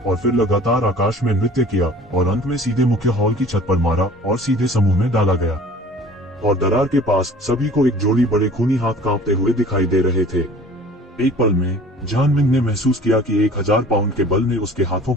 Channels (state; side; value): normal; both; correlation 0.47